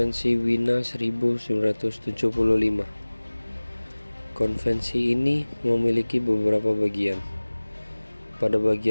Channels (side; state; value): both; inverted; correlation -1.00